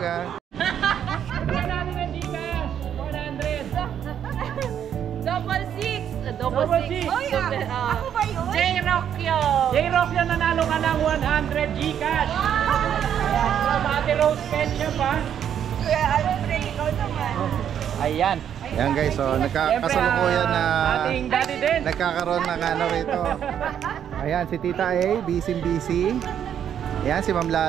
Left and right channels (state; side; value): quieter; left; 9.2 dB